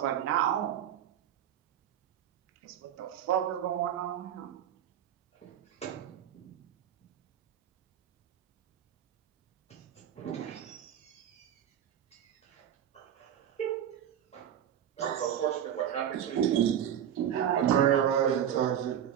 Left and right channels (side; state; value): left; quieter; 10.0 dB